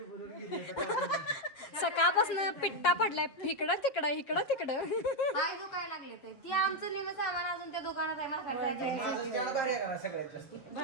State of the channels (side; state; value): right; late; 7.2 ms